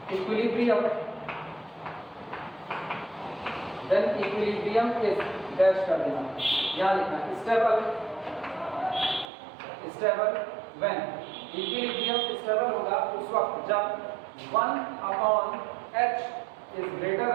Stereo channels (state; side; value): drops out; left; at 9.3 s